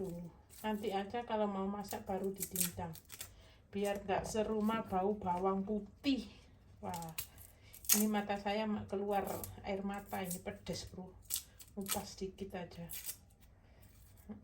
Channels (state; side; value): identical; both; correlation 1.00